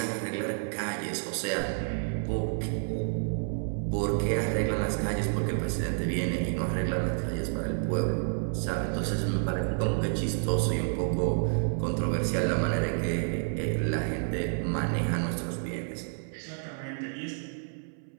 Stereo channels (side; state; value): left; silent; 58 dB below the other